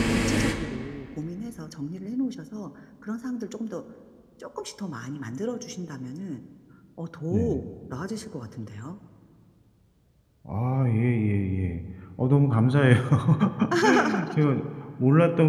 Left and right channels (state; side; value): identical; both; correlation 1.00